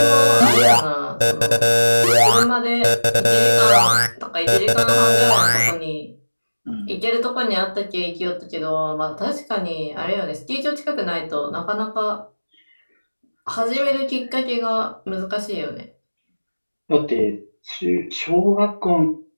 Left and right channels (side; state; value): both; inverted; correlation -1.00